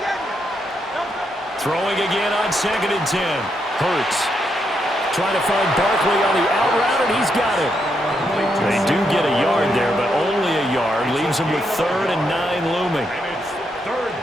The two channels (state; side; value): normal; both; correlation 0.79